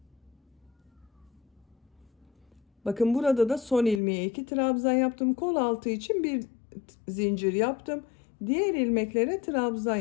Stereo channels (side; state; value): right; drops out; at 4.0 s